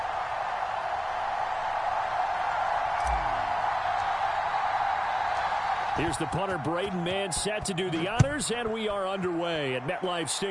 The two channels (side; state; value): both; identical; correlation 1.00